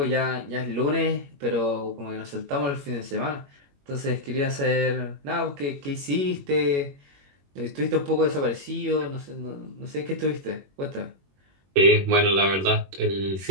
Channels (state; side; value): late; left; 21 ms